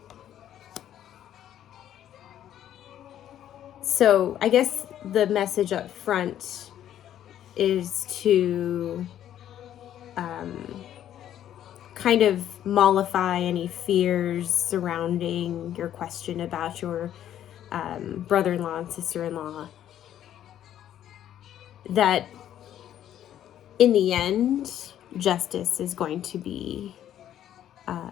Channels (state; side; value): quieter; right; 11.1 dB